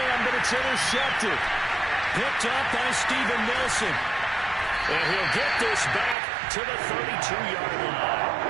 but it's intercepted. Picked up by Steven Nelson. And he'll get this back to the 32-yard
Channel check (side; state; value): left; drops out; at 6.2 s